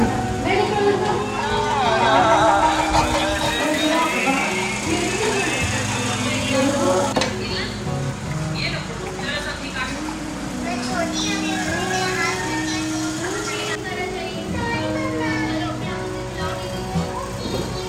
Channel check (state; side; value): identical; both; correlation 1.00